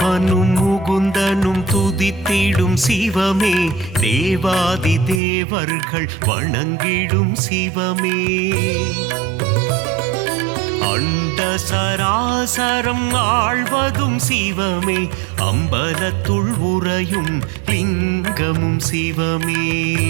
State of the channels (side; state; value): left; drops out; at 5.2 s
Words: முகுந்தனும் துதித்திடும் சிவமே, தேவாதி தேவர்கள் வணங்கிடும் சிவமே, அண்ட சராசரம் ஆழ்வதும் சிவமே, அம்பலத்துள் உறையும் லிங்கமும் சிவமே,